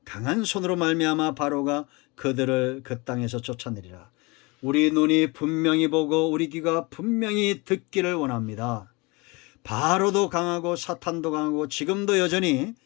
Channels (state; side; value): quieter; right; 26.3 dB